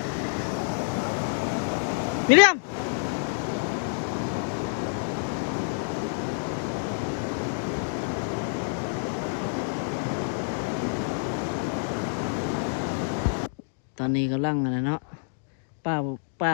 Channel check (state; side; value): silent; right; digital silence